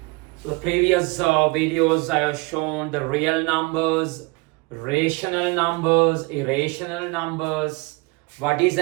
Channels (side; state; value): left; quieter; 26.3 dB